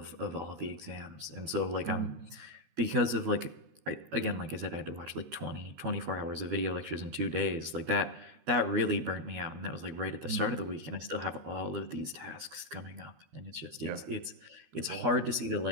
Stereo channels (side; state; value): left; late; 13 ms